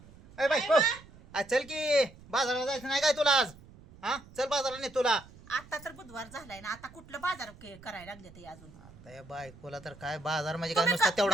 ए बायको, आज चल की बाजाराला जायचं नाही काय तुला आज? हा, चल बाजाराला नाही तुला. आता तर बुधवार झालाय ना, आता कुठलं बाजार करायला लागले ते अजून. आता या बायकोला तर काय बाजार म्हणजे काय तुम्ही नुसता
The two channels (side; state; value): right; noise; rumble, 21 dB below the sound